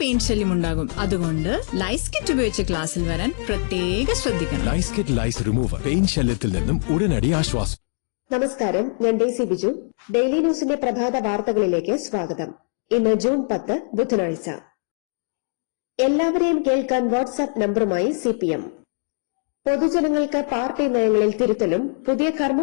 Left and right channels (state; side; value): silent; right; 64 dB below the other